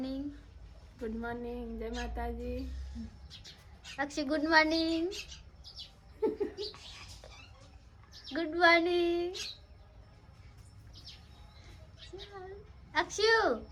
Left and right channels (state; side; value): identical; both; correlation 1.00